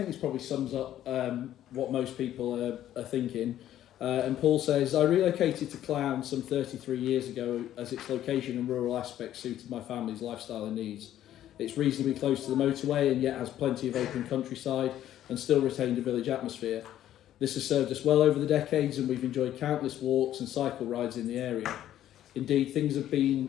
this probably sums up what most people are thinking. And Paul says, I relocated to Clown some 33 years ago as its location and rural aspects suited my family's lifestyle and needs. It's reasonably close to the motorway and yet has plenty of open countryside and still retained a village atmosphere. This has served us well over the decades and we've enjoyed countless walks and cycle rides in the area. Indeed, things have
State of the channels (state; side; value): quieter; right; 12.1 dB